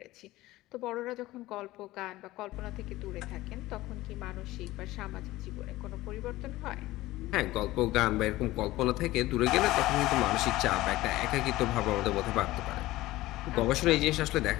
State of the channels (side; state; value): right; quieter; 17.4 dB